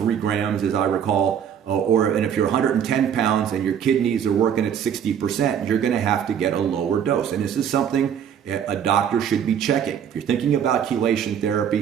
grams, as I recall. And if you're 110 pounds and your kidneys are working at 60%, you're going to have to get a lower dose. And this is something a doctor should be checking. If you're thinking about chelation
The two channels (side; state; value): left; quieter; 8.6 dB